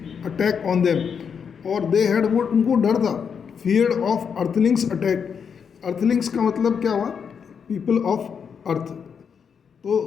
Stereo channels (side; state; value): right; quieter; 6.8 dB